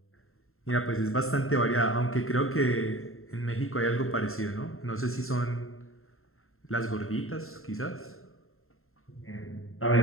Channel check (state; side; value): late; right; 0.62 ms